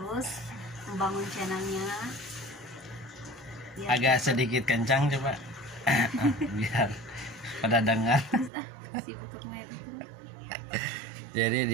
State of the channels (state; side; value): drops out; left; at 8.5 s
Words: membangun channelnya. Biar Agak sedikit kencang coba. Biar pada dengar. sibuk ngedit. Jadi